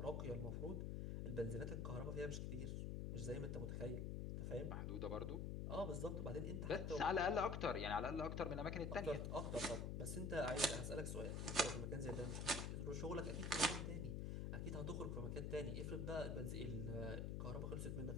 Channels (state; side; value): noise; left; hum, 1 dB below the sound